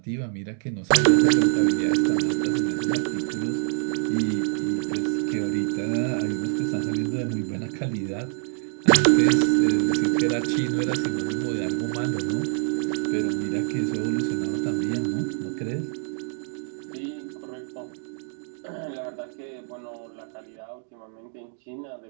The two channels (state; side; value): silent; left; digital silence